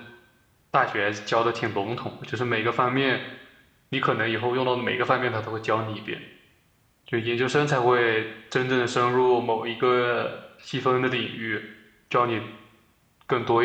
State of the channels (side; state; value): both; identical; correlation 1.00